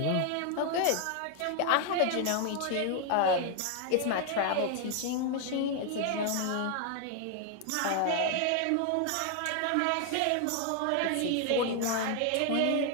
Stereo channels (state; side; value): different; both; correlation 0.01